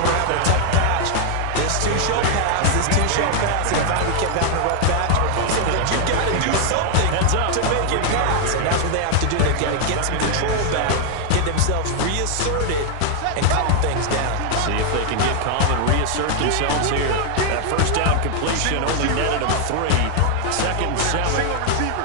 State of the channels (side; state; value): both; different; correlation 0.00